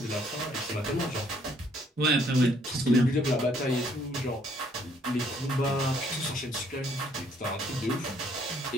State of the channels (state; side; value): normal; both; correlation 0.65